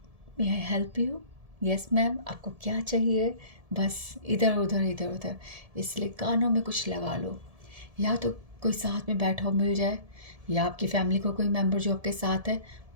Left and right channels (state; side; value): late; left; 1.7 ms